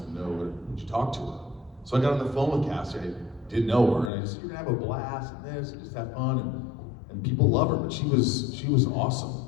know, would you talk to her? So I got on the phone with Cassie, I didn't know her, and I just said, you're gonna have a blast and this, and just have fun, and people love her, but she was awesome.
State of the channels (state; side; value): drops out; right; at 4.1 s